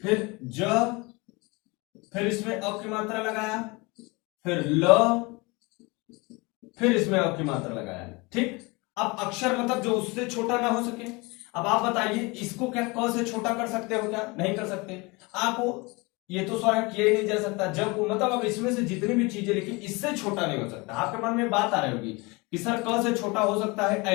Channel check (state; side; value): quieter; right; 26.0 dB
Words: ज, फिर इसमें अ की मात्रा लगाया, फिर ल, फिर इसमें अ की मात्रा लगाया। ठीक, अब अक्षर मतलब जो उससे छोटा ना हो सके। अब आप बताइए, इसको क्या क से छोटा कर सकते हो? क्या नहीं कर सकते। आ को ये तो स्वर किया ही नहीं जा सकता। जब को मतलब अब इसमें से जितनी भी चीजें लिखी इससे छोटा नहीं हो सकता। आपके मन में बात आ रही होगी कि सर क से छोटा हो सकता है